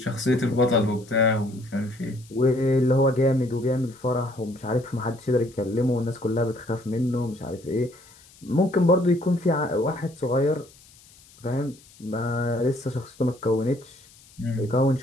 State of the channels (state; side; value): noise; left; hiss, 25 dB below the sound